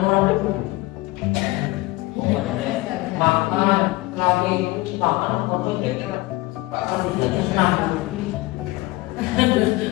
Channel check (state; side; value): quieter; right; 20.7 dB